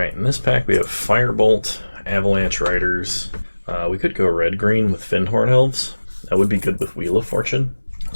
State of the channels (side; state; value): both; inverted; correlation -1.00